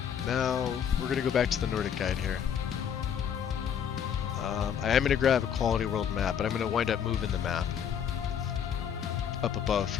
Now we're gonna go back to the Nordic guide here. I am gonna grab a quality world map, but I'm gonna wind up moving the map up above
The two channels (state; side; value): quieter; right; 8.3 dB